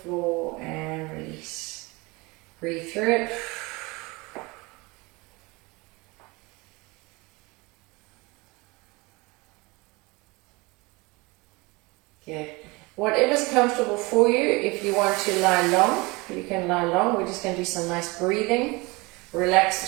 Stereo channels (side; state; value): left; quieter; 25.0 dB